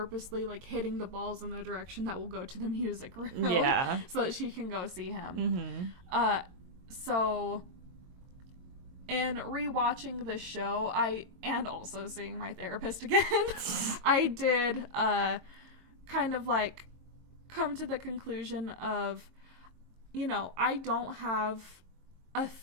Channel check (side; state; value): left; late; 22 ms